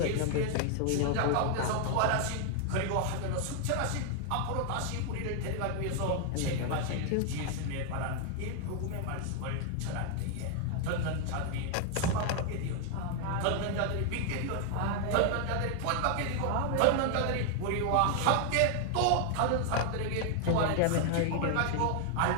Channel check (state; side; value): different; both; correlation 0.00